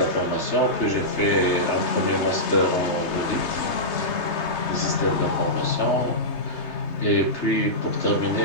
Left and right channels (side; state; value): right; late; 3.2 ms